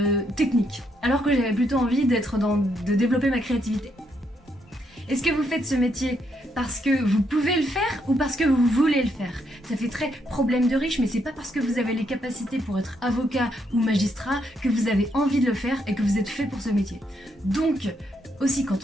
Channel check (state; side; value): normal; both; correlation 0.76